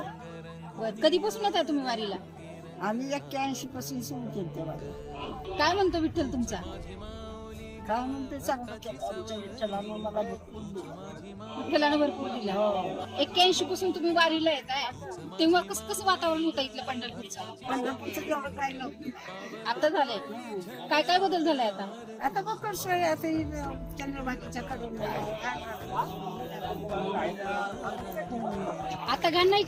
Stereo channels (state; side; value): identical; both; correlation 1.00